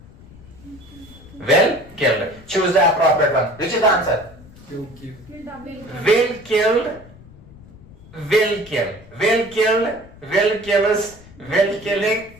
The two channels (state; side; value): noise; left; rumble, 21 dB below the sound